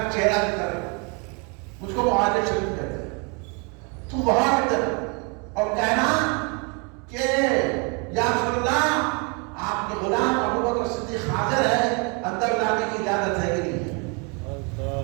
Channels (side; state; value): left; quieter; 33.6 dB